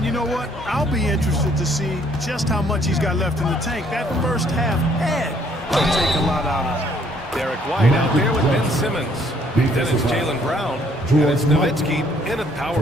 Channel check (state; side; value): normal; both; correlation 0.64